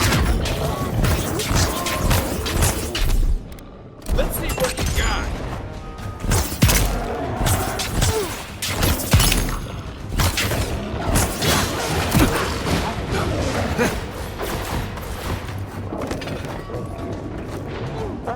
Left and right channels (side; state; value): both; identical; correlation 1.00